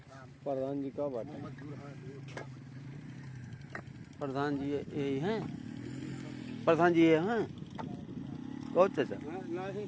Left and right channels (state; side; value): identical; both; correlation 1.00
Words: प्रधान जी का बात है। प्रधान जी यही हैं? प्रधान जी ये हैं? बहुत चाचा नहीं